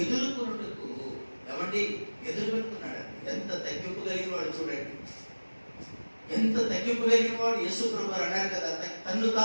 ఎదుర్కొన్నట్టుకు ఎదురు పెట్టుకున్నాడు. ఎంత తగ్గింపు కలిగిన వాడు చూడండి, ఎంత తగ్గింపు కలిగిన వాడు. యేసు ప్రభువు అన్నారు కదా, తన్ను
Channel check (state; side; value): inverted; both; correlation -1.00